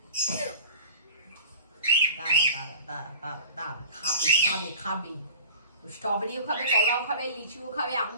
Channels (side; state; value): both; inverted; correlation -0.41